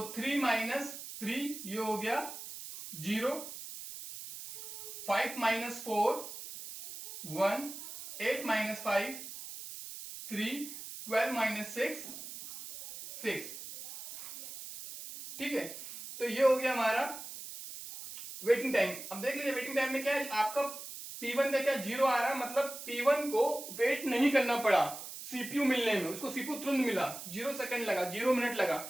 3 माइनस 3 ये हो गया 0, 5 माइनस 4 1, 8 माइनस 5 3, 12 माइनस 6 6, ठीक है। तो ये हो गया हमारा वेटिंग टाइम। अब देख लीजिए वेटिंग टाइम में क्या है, आपका P1 का क्या 0 आ रहा है, मतलब P1 को वेट नहीं करना पड़ा सीपीयू मिलने में, उसको सीपीयू तुरंत मिला, 0 सेकंड लगा, 0 मिनट लगा।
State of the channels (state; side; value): noise; right; hiss, 11 dB below the sound